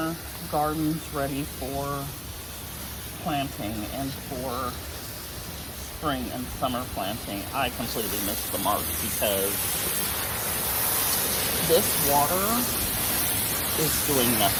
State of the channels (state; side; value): identical; both; correlation 1.00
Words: gardens ready for planting and for spring and summer planting, I completely missed the mark because this water is doing